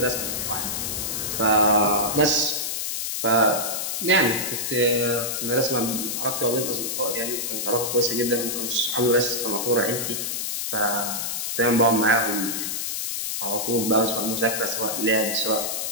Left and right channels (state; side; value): noise; left; hiss, 2 dB below the sound